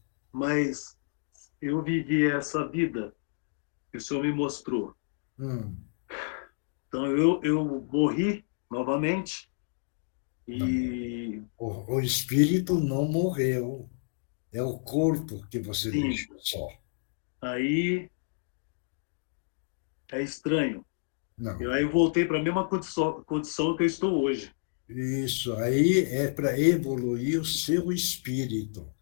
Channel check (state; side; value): silent; right; digital silence